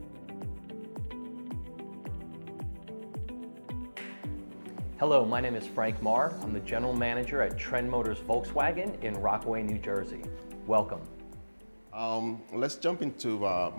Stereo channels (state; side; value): inverted; both; correlation -1.00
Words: Hello, my name is Frank Marr. I'm the General Manager at Trend Motors Volkswagen in Rockaway, New Jersey. Welcome. Let's jump into